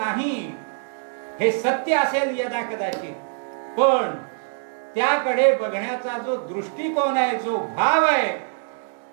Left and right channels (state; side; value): silent; left; 63 dB below the other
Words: हे सत्य असेल यदा कदाचित, पण त्याकडे बघण्याचा जो दृष्टिकोन आहे, जो भाव आहे,